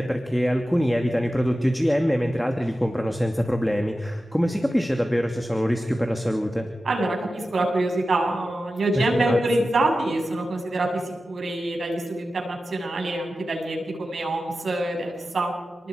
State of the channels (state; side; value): normal; both; correlation 0.93